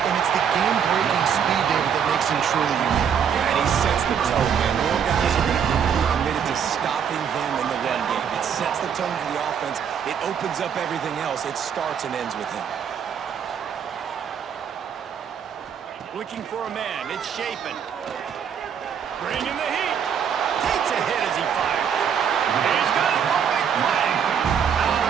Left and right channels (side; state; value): left; quieter; 7.8 dB